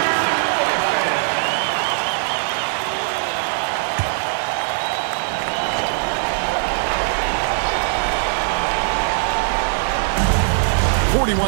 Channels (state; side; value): silent; left; digital silence